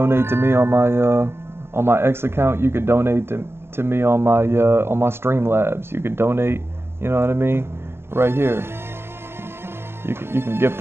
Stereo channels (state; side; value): late; left; 0.12 ms